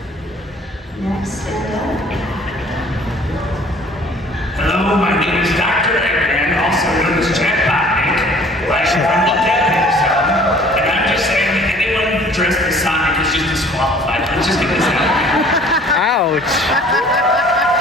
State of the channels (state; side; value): normal; both; correlation 0.52